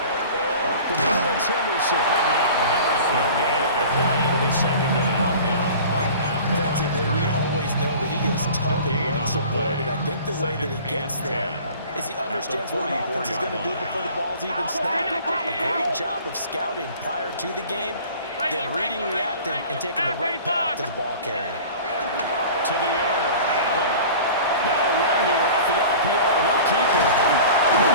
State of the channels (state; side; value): inverted; both; correlation -0.42